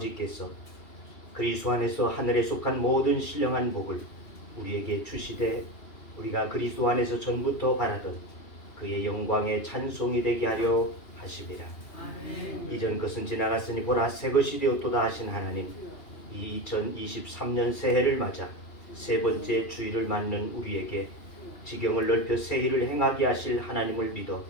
그리스도 안에서 하늘에 속한 모든 신령한 복을 우리에게 주시되 우리가 그리스도 안에서 전부터 바라던 그의 영광의 찬송이 되게 하려 하심이라. 이전 것은 지나갔으니 보라 새 것이 되었도다 하신 하나님, 이 2023년 새해를 맞아 세 번째 주일을 맞는 우리에게 지경을 넓혀 새해를 행하게 하실 하나님을 믿어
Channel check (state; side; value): late; right; 2.8 ms